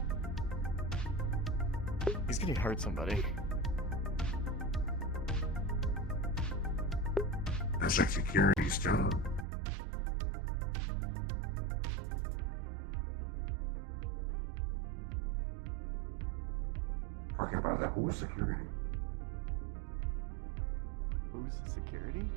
He's gonna hurt somebody. That's like security's job. Talking about that, who's security? Who's the security?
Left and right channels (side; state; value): left; drops out; at 9.5 s